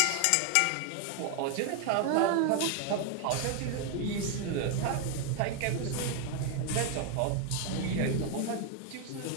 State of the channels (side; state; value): both; different; correlation 0.01